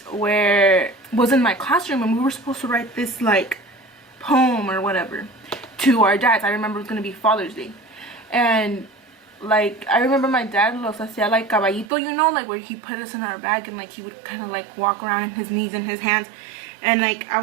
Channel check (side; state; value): left; drops out; at 11.9 s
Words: where it was in my classroom, and we were supposed to write this like poem or whatever to our dads. I remember it was gonna be Father's Day, and like I remember my dad los hacía like caballito, you know, like where he put us in our bag, and like he would kind of like walk around in his knees and his hands, and like I